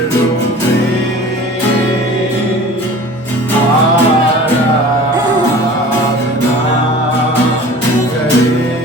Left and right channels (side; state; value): both; normal; correlation 0.42